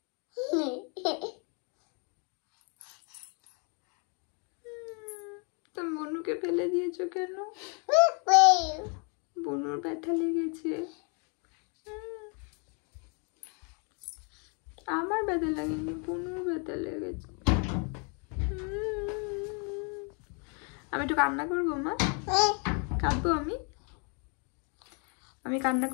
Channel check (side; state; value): right; quieter; 36.7 dB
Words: তুমি বনুকে ফেলে দিয়েছো কেন? বনুর ব্যথা লেগেছে, আমার ব্যথা লাগেনি, বনুর ব্যথা লেগেছে। আমি একটু কান্না করবো মা, কাঁদবো আমি কান্না